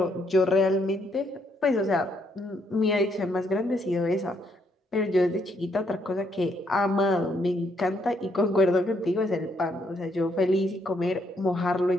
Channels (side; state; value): both; normal; correlation 0.73